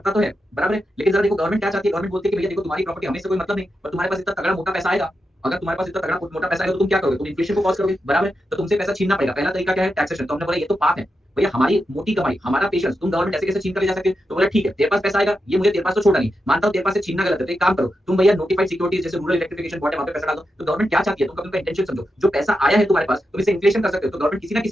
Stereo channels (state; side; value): normal; both; correlation 0.87